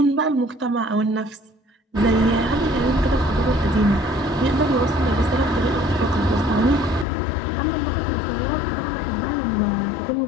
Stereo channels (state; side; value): drops out; right; at 7.1 s